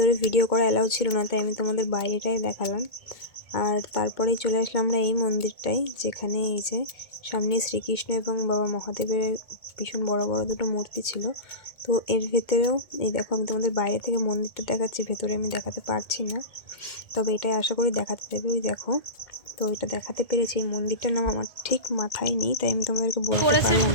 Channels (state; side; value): late; right; 2.2 ms